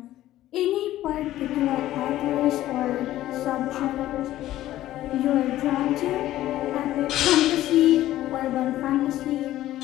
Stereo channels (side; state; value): right; quieter; 14.3 dB